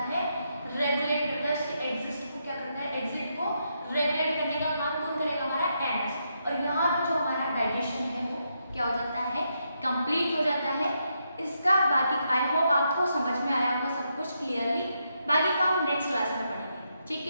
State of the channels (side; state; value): both; inverted; correlation -0.81